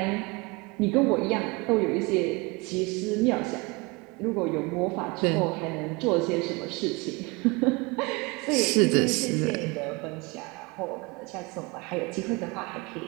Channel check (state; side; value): quieter; left; 26.6 dB